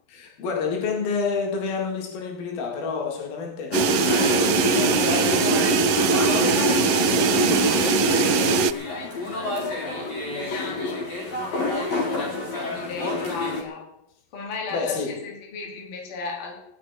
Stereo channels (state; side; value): late; right; 11 ms